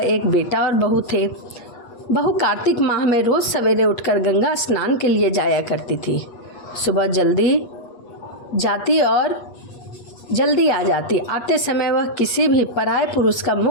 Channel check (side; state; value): right; late; 8.3 ms